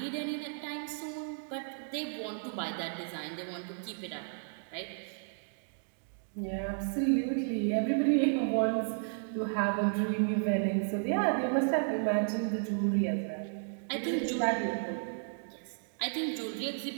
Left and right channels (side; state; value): left; silent; digital silence